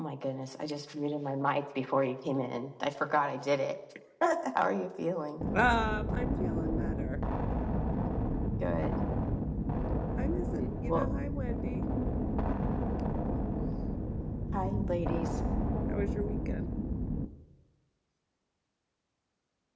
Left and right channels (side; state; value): both; identical; correlation 1.00